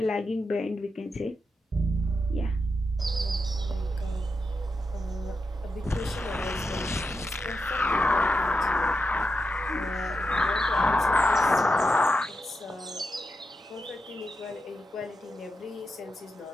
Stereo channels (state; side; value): normal; both; correlation 0.86